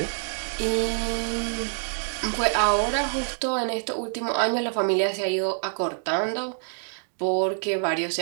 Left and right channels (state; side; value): silent; left; 61 dB below the other